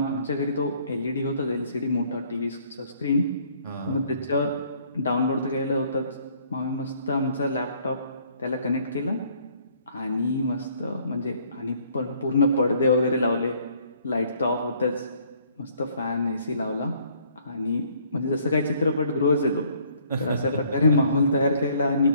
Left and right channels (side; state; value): both; inverted; correlation -0.62